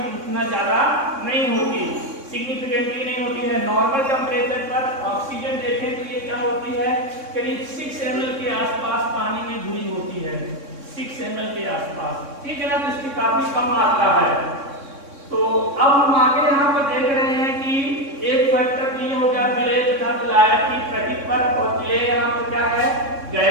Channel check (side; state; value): left; late; 3.6 ms